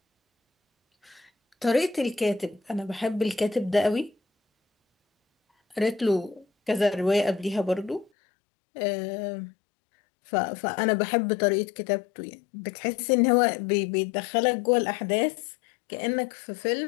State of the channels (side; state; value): right; drops out; at 8.1 s